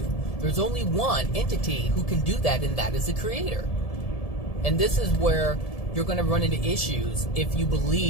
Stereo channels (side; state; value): right; late; 1.7 ms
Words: There's only one entity who can do that, and that is the Creator. And this is where you're going to run into issues if you